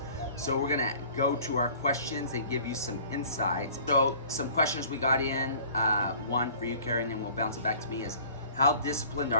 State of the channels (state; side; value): inverted; both; correlation -0.49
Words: So we're gonna go to our questions and give you some insights. So some questions we got in, one for you, Carey, and then we'll bounce it back to me, is how disciplined